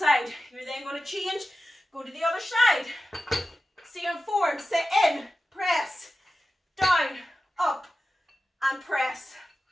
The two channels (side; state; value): both; normal; correlation 0.94